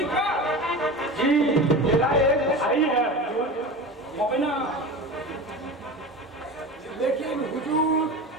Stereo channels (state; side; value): normal; both; correlation 0.30